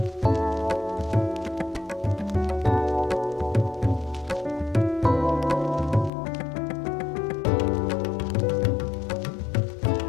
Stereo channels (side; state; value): right; drops out; at 6.1 s